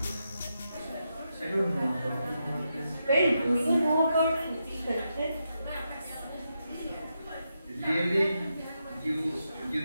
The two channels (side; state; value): both; inverted; correlation -0.85